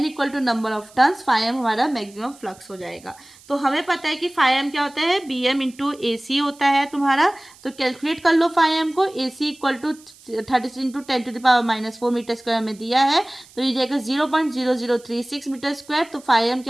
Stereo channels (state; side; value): noise; right; hiss, 24 dB below the sound